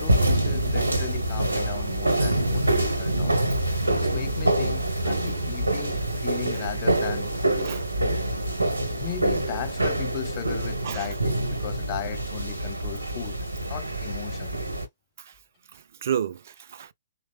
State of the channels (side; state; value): both; inverted; correlation -0.77